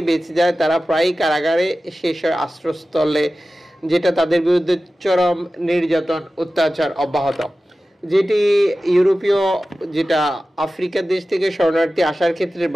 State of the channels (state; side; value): normal; both; correlation 0.95